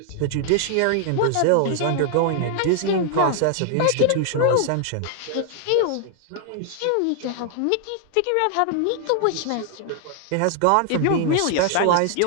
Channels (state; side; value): different; both; correlation 0.00